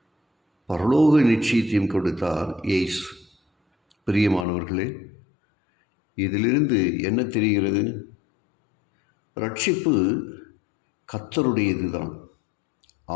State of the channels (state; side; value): drops out; right; at 4.5 s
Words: பரலோக நிச்சயத்தையும் கொடுத்தார் இயேசு. பிரியமானவர்களே, இதிலிருந்து என்ன தெரிகிறது? ரட்சிப்பு கர்த்தருடையது தான்.